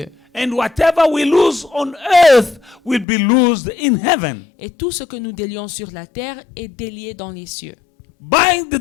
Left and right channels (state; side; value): drops out; right; at 3.1 s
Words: And whatever we lose on earth will be loosed in heaven. Et tout ce que nous délions sur la terre est délié dans les cieux.